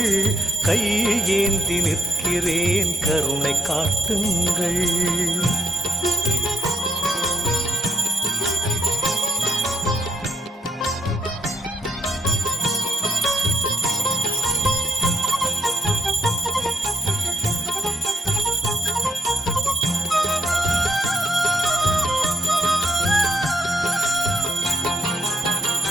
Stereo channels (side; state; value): both; normal; correlation 0.76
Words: கையேந்தி நிற்கிறேன், கருணை காட்டுங்கள்.